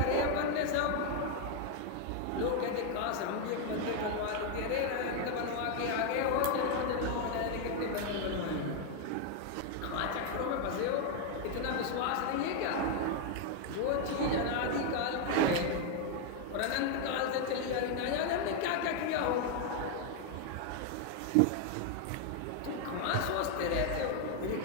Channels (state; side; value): different; both; correlation 0.00